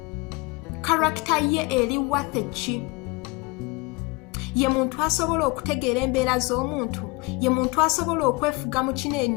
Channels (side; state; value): right; quieter; 26.4 dB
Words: Character ye eri wathe ki. Ye muntu asobola okutegeera embeera z'omuntu, ye muntu asobola okwefuga mu